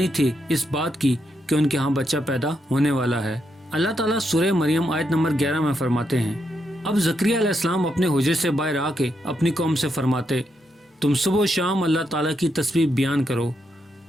تھی اس بات کی کہ ان کے ہاں بچہ پیدا ہونے والا ہے۔ اللہ تعالیٰ سورہ مریم آیت نمبر 11 میں فرماتے ہیں، اب زکریا علیہ السلام اپنے حجرے سے باہر آ کے اپنی قوم سے فرماتے، تم صبح و شام اللہ تعالیٰ کی تسبیح بیان کرو۔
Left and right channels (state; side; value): normal; both; correlation 0.81